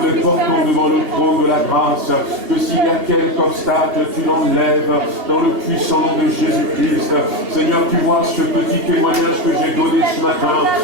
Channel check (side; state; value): left; late; 2.7 ms